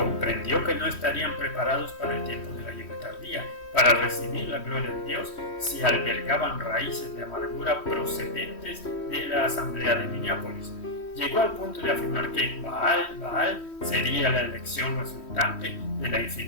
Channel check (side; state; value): right; late; 3.1 ms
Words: que no estarían preparados para el tiempo de la lluvia tardía, para recibir la gloria de Dios, si albergaban raíces de amargura procedentes de la asamblea de Minneapolis. Llegó al punto de afirmar que Baal sería la elección resultante de la